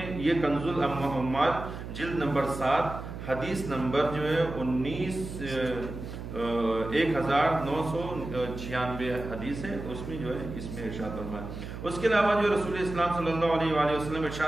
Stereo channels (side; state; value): right; noise; hum, 9 dB below the sound